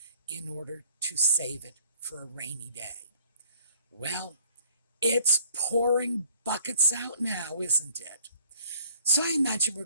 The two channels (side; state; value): both; inverted; correlation -0.58